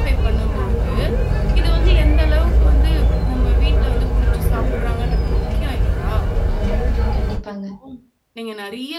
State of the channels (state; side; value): identical; both; correlation 1.00